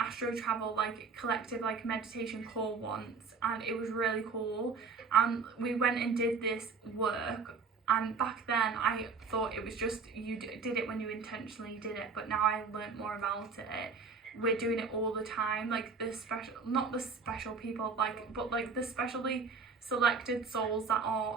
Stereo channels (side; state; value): left; quieter; 4.9 dB